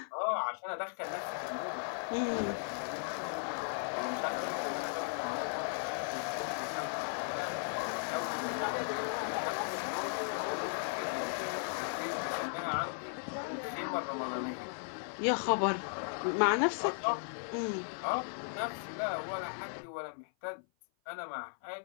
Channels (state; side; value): silent; right; 53 dB below the other